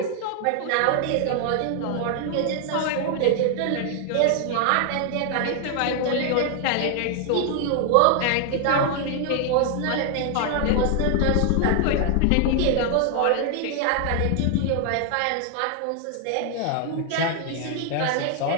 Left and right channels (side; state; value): both; different; correlation 0.00